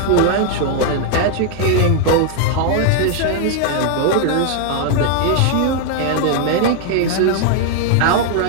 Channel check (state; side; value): different; both; correlation 0.00